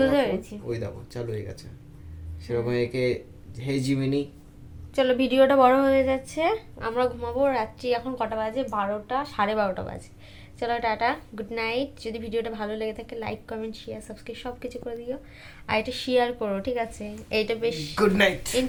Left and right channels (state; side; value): identical; both; correlation 1.00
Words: আমার phone, পেরেছি। ওই দেখো চালু হয়ে গেছে। সেরকম একে হে জিমিনি। চলো, ভিডিওটা বড় হয়ে যাচ্ছে, আমরা ঘুমাবো। রাত্রি এখন কটা বাজে? 12টা, 12:30 বাজে। চলো, টাটা, গুড নাইট। যদি ভিডিওটা ভালো লেগে থাকে, লাইক কমেন্ট শেয়ার সাবস্ক্রাইব সব কিছু করে দিও। আর এটা শেয়ার করো, ঠিক আছে? এইটা বেশ গুড নাইট।